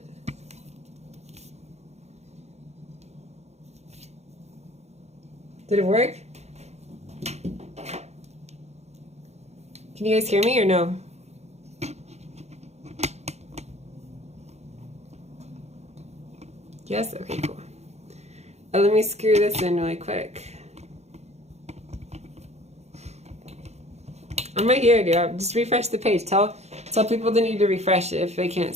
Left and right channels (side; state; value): left; late; 0.32 ms